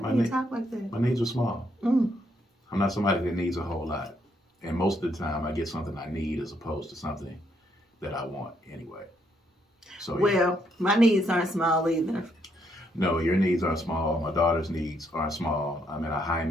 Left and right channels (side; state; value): both; normal; correlation 0.74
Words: when you talk like that. My needs are small. I'm not somebody that needs a whole lot. And most of the time, I get something I need as opposed to something that I want anyway. So, well, my needs aren't small either. No, your needs aren't small. My daughter's needs aren't small. I'm in a